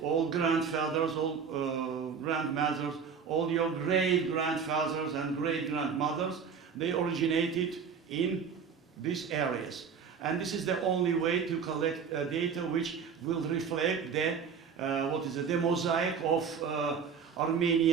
grandfathers, all grandmothers, all your great-grandfathers and great-grandmothers, they originated in these areas. And this is the only way to collect data which will reflect the mosaic of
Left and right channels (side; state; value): left; quieter; 6.4 dB